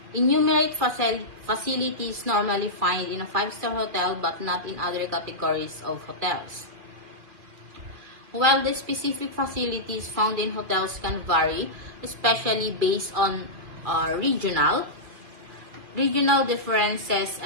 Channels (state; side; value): late; left; 2.4 ms